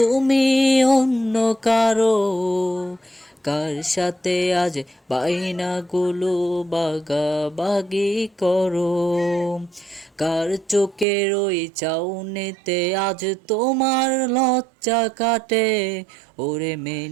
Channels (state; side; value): drops out; left; at 11.1 s